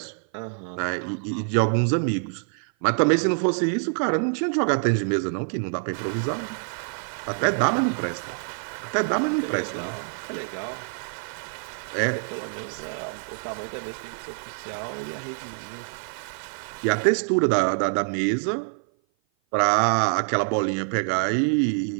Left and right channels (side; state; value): left; silent; 55 dB below the other